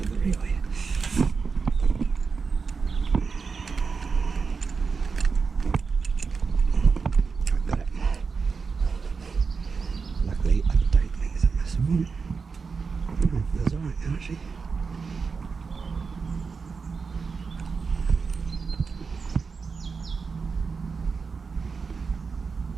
the reel here. I've got it. Luckily, I don't think it's a massive one. That's alright, actually.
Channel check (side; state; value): left; quieter; 5.1 dB